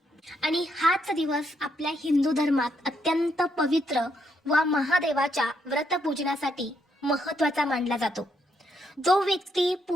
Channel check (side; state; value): both; normal; correlation 0.76